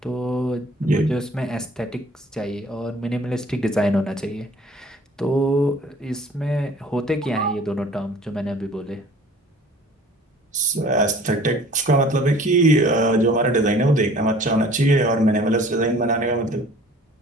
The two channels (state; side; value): normal; both; correlation 0.49